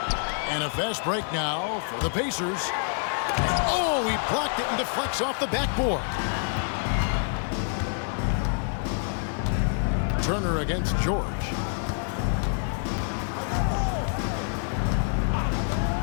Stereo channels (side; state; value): right; silent; 60 dB below the other